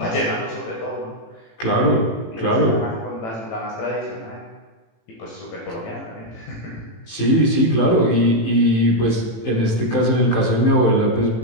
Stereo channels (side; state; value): right; late; 18 ms